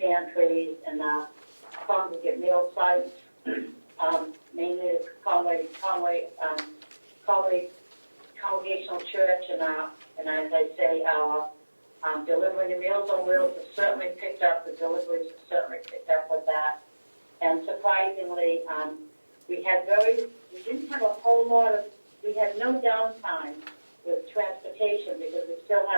and our congregate meal sites, mainly the Conway Congregational Church and as I say, our delivering the Meals on Wheels has certainly picked up. The deliveries have certainly picked up with that. And surprisingly, we had no downtime with transportation because we still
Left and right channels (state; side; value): inverted; both; correlation -1.00